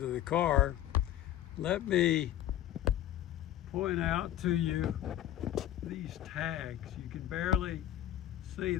the car, let me point out to you these tags. You can barely see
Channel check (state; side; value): quieter; right; 12.4 dB